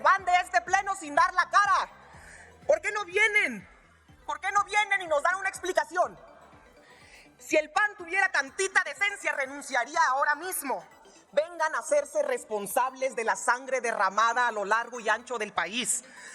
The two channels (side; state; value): both; identical; correlation 1.00